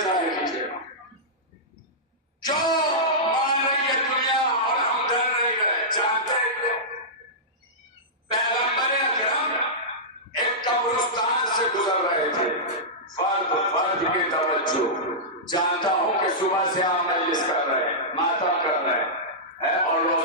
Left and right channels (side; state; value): both; normal; correlation -0.14